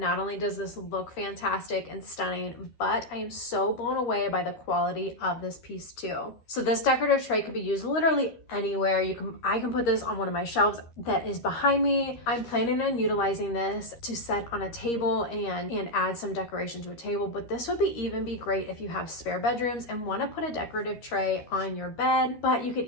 only does this look fantastic and stunning, but I am so blown away by the quality of this piece too. So this decorative tray could be used literally anywhere. I can put this on one of my shelves that is behind me. I'm planning on utilizing this to set on a table and add some decoration to a table, but this would even be great if you have spare bedrooms and want to put a decorative tray on your bed. But you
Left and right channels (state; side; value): late; right; 13 ms